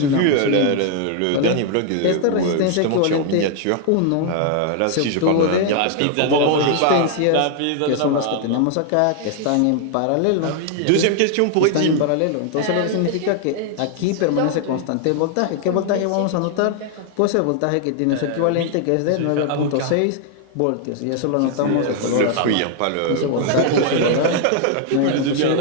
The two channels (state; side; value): different; both; correlation 0.00